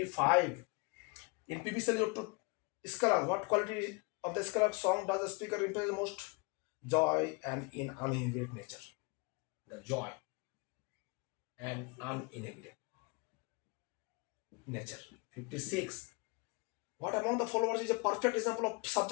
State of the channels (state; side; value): quieter; right; 29.2 dB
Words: In PBC to Scala, what quality of the Scala song does the speaker represent most? Joy and in uninhibited nature. The joy and uninhibited nature. 56. What among the followers is a perfect example of